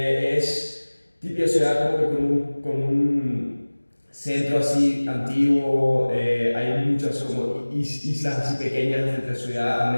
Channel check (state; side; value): inverted; both; correlation -1.00